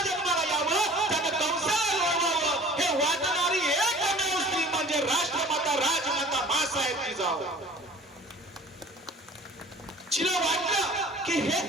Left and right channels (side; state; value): both; normal; correlation 0.47